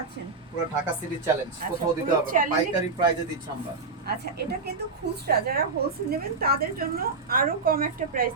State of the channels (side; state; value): left; quieter; 4.1 dB